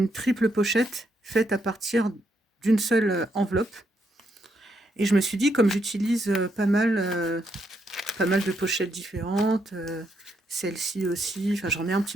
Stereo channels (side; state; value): both; normal; correlation 0.77